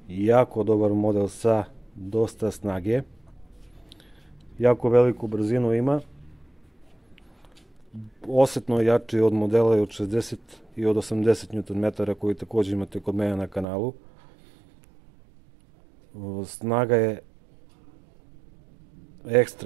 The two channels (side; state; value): left; drops out; at 13.7 s